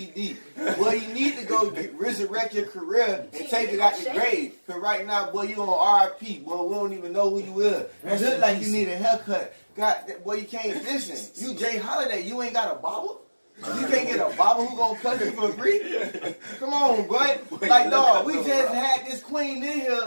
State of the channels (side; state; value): both; inverted; correlation -1.00